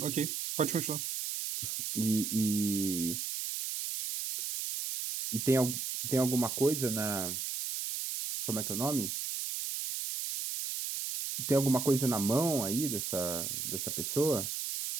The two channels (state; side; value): noise; right; hiss, 3 dB below the sound